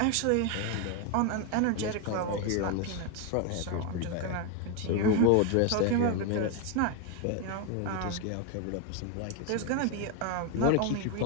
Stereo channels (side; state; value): both; different; correlation 0.02